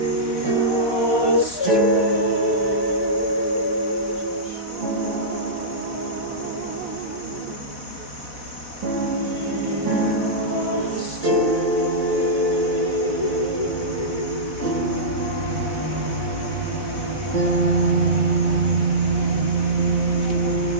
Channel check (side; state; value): right; late; 4.1 ms